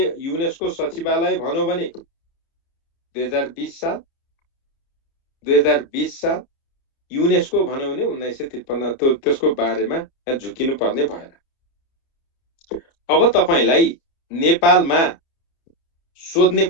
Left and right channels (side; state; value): right; late; 30 ms